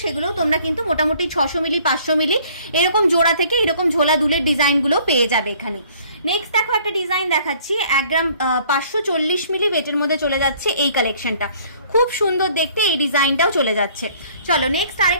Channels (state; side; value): inverted; both; correlation -0.57